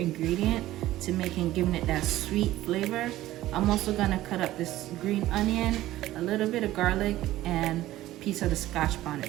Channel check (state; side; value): quieter; left; 15.3 dB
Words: to giving it that sweet flavor. I'm also gonna cut up this green onion, a little bit of garlic, and a piece of the Scotch